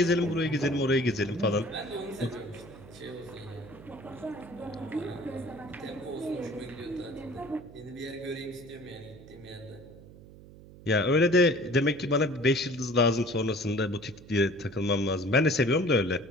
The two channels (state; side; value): noise; right; hum, 19 dB below the sound